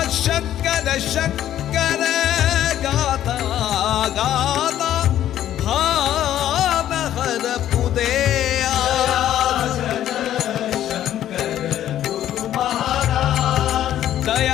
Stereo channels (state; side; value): quieter; right; 11.8 dB